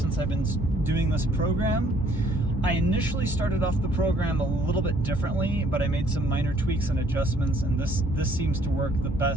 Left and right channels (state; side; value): normal; both; correlation 0.62